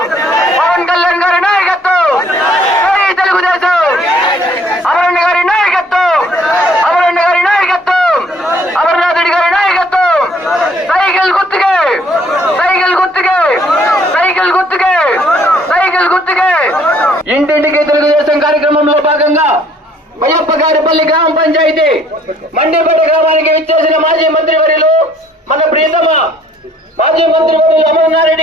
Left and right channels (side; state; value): both; normal; correlation 0.60